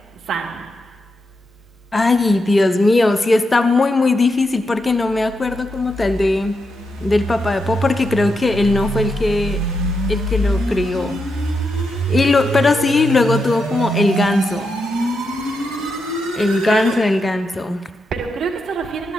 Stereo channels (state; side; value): normal; both; correlation 0.85